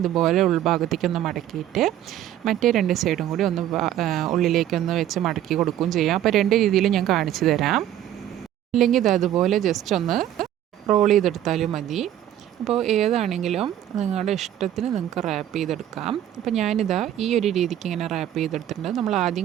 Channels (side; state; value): left; quieter; 11.7 dB